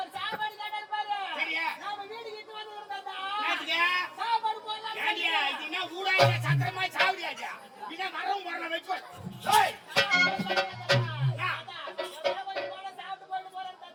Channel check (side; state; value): both; identical; correlation 1.00